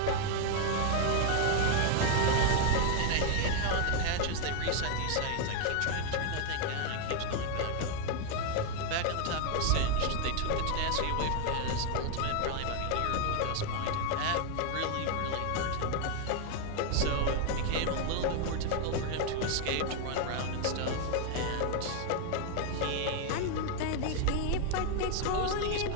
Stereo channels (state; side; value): different; both; correlation 0.01